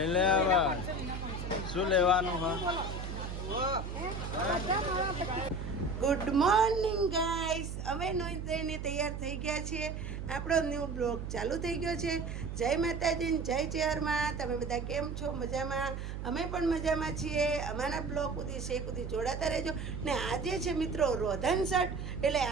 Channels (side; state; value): right; noise; hum, 6 dB below the sound